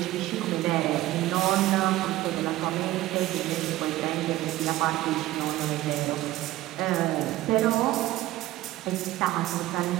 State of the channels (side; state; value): left; quieter; 16.2 dB